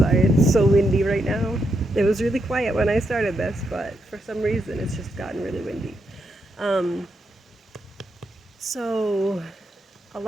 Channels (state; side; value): normal; both; correlation 0.82